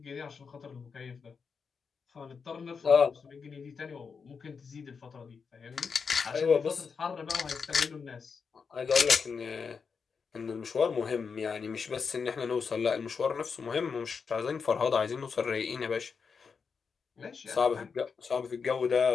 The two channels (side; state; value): right; quieter; 5.6 dB